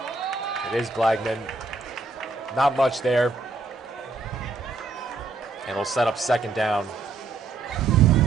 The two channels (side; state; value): left; quieter; 3.8 dB